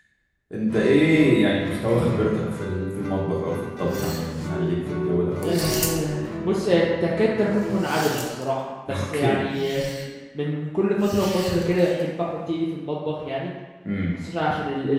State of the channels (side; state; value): both; identical; correlation 1.00